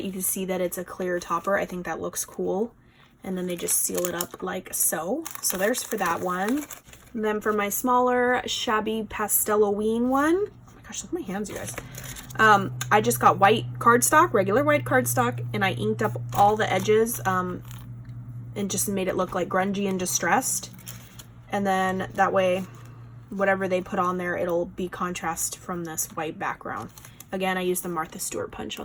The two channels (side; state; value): both; identical; correlation 1.00